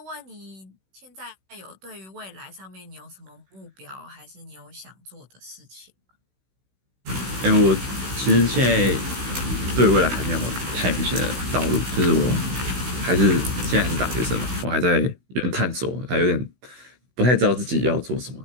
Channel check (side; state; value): left; late; 16 ms